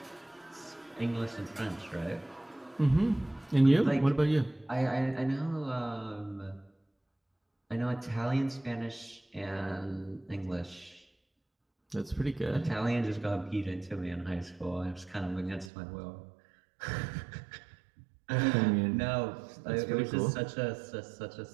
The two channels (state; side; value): drops out; left; at 15.7 s